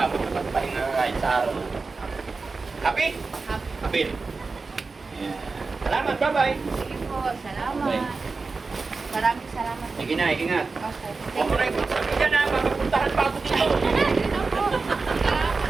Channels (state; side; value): quieter; left; 4.1 dB